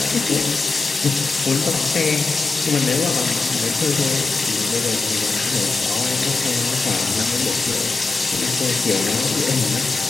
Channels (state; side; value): quieter; right; 3.9 dB